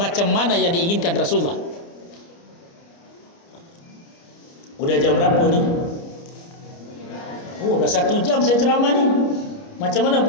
mana yang diinginkan Rasulullah. Udah jam berapa ni? Oh, dah 1 jam saya ceramah ni. Macam mana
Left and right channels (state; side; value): late; right; 29 ms